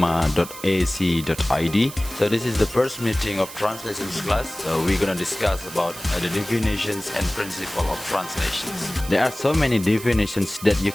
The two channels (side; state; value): right; noise; hiss, 13 dB below the sound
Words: So this is the first meeting of translations class. So we're gonna discuss about the definitions and principle of translations. There are so many definitions that you